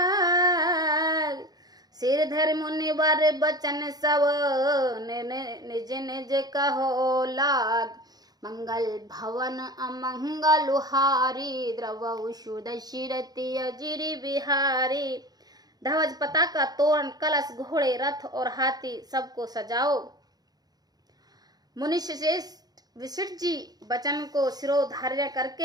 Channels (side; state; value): left; late; 0.19 ms